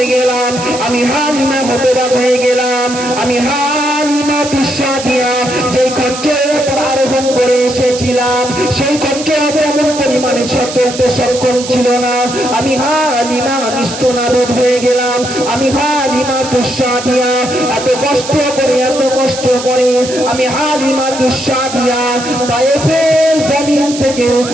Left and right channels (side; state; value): right; noise; hiss, 10 dB below the sound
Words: গেলাম, আমি হালিমাতুস সাদিয়া যে খচ্চরের উপর আরোহণ করে এসেছিলাম সেই খচ্চর তেমন পরিমাণে চলতে সক্ষম ছিল না। আমি হালিমা নিস্তনাবুদ হয়ে গেলাম। আমি হালিমাতুস সাদিয়া এত কষ্ট করে আমি হালিমাতুস সাদিয়া তায়েফের জমিন থেকে